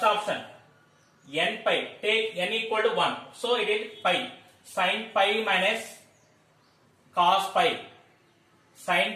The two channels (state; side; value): identical; both; correlation 1.00